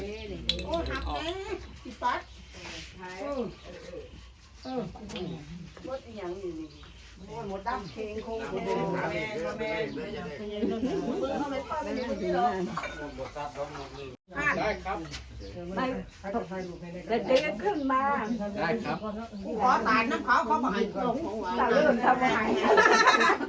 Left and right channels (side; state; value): both; identical; correlation 1.00